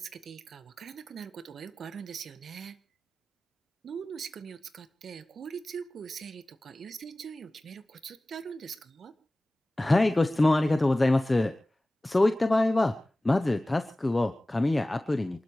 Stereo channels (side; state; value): both; normal; correlation 0.97